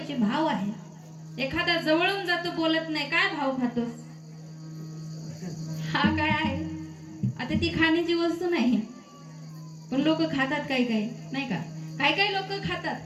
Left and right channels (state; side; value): identical; both; correlation 1.00